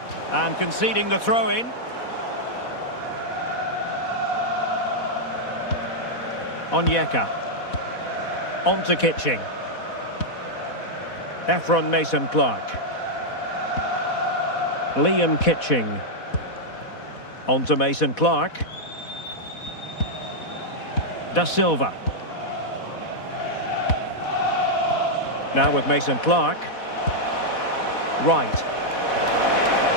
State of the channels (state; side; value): late; right; 4.1 ms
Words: And conceding the throw-in. Onyeka. On to Kitching. Ephron Mason-Clark. Liam Kitching. On to Mason-Clark. Da Silva. Now with Mason-Clark. Right.